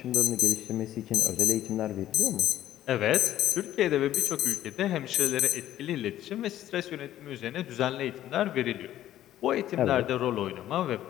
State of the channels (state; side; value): quieter; right; 12.7 dB